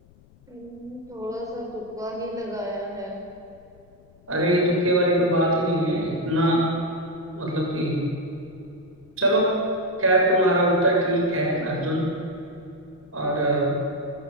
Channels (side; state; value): left; noise; rumble, 27 dB below the sound